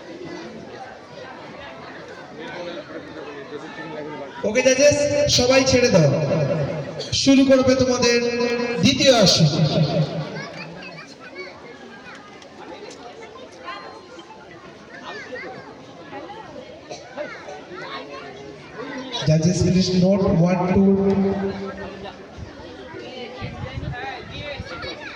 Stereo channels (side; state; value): both; identical; correlation 1.00